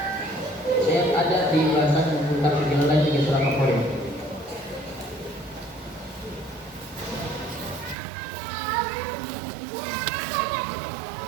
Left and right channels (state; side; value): drops out; left; at 8.0 s